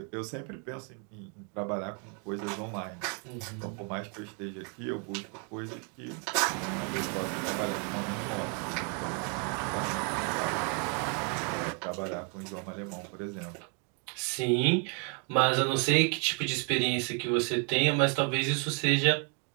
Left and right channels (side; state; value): left; quieter; 38.4 dB